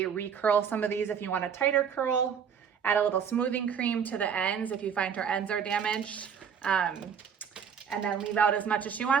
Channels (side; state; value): left; quieter; 7.4 dB